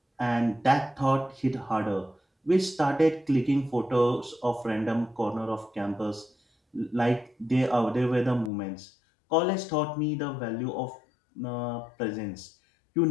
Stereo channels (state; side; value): drops out; right; at 8.5 s